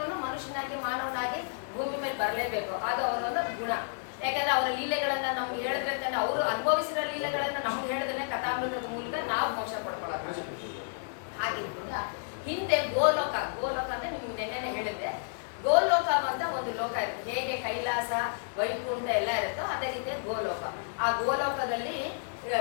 ಮನುಷ್ಯನಾಗಿ ಮಾನವನಾಗಿ ಭೂಮಿ ಮೇಲೆ ಬರಲೇಬೇಕು, ಅದು ಅವರೊಂದು ಗುಣ. ಯಾಕಂದ್ರೆ ಅವರ ಲೀಲೆಗಳನ್ನ ನಮ್ಗೆ ಹೇಳಿದ್ರೆ ತಾನೆ, ಅವರು ಅನುಭವಿಸಿದ ಲೀಲೆಗಳನ್ನ ನಮ್ಗೆ ಹೇಳಿದ್ರೆ ಕಥಾಮೃತದ ಮೂಲಕ ನಾವು ಮೋಕ್ಷ ಪಡ್ಕೊಳ್ಳೋಣ. ಹಾಗಿದ್ರಿಂದ ಹಿಂದೆ ಗೋಲೋಕ ಅಂದ್ರೆ ನಿಮ್ಗೆ ನೆನ್ನೆ ಹೇಳಿದ್ದೆ, ಗೋಲೋಕ ಅಂತ ಒಂದು ಲೋಕ ಇರುತ್ತೆ. ಹೇಗೆ ಕೈಲಾಸ ವೈಕುಂಠ ಎಲ್ಲ ಇರುತ್ತೋ ಅದೇ ರೀತಿಯ ಗೋಲೋಕ. ಆ ಗೋಲೋಕದಲ್ಲಿ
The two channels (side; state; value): right; silent; digital silence